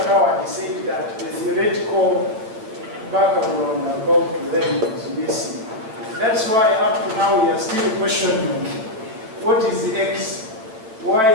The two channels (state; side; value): late; left; 9.0 ms